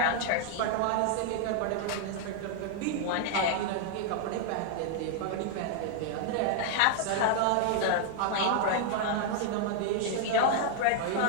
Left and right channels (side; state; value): both; different; correlation -0.01